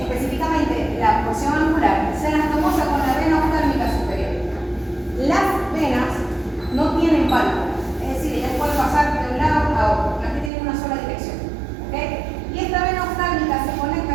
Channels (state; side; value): drops out; left; at 10.5 s